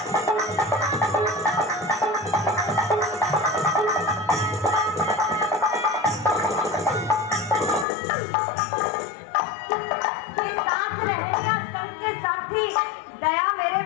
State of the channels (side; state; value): right; drops out; at 7.9 s